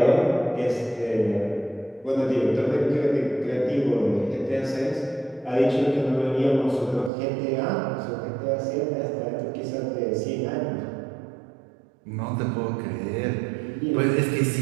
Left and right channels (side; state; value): left; drops out; at 7.1 s